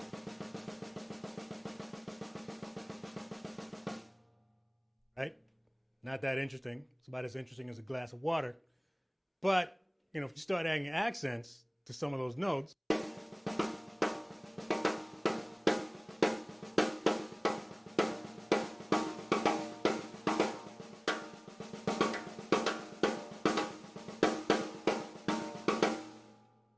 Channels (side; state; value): both; identical; correlation 1.00